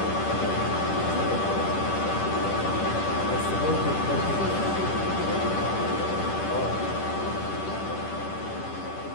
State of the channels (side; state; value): right; late; 10 ms